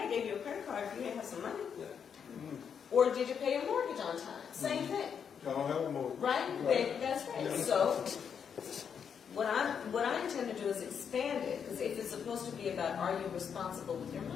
gave you a credit card if you didn't have some money. Or did you pay your mortgage on time? Same thing. I don't have a mortgage. Right? That's right. So what I intend to do is expand it, because if it's supposed to be about are you responsible with your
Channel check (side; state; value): right; quieter; 7.3 dB